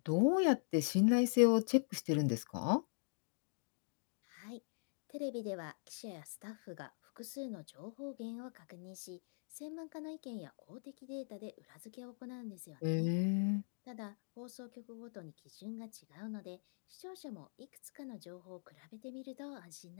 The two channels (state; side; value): silent; right; digital silence